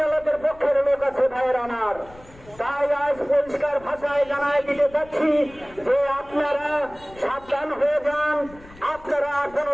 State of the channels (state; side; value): noise; left; rumble, 22 dB below the sound